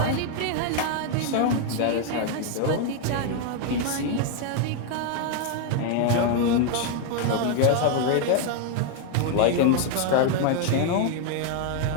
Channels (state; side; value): different; both; correlation 0.00